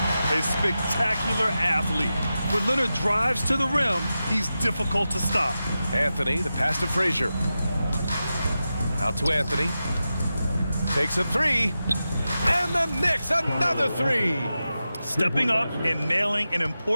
A spectacular athlete. When Leonard drives to the rim, he's difficult to stop. Anthony, the pass to Frazier. Out to Anthony. Takes a three. And the Knicks, another three. Stepping up and nailing an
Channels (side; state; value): both; inverted; correlation -0.92